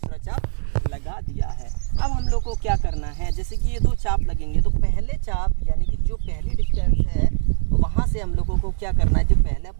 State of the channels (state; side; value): silent; left; digital silence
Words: चाप लगा दिया है। अब हम लोग को क्या करना है, जैसे कि ये दो चाप लगेंगे, तो पहले चाप यानी कि जो पहली डिस्टेंस है, तो वहाँ से हम लोगों को क्या करना है, जो पहला